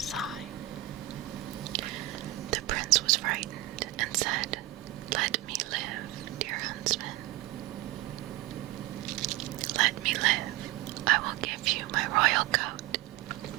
The prince was frightened and said, Let me live, dear huntsman. Let me live. I will give you my royal coat,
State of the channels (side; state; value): left; quieter; 16.8 dB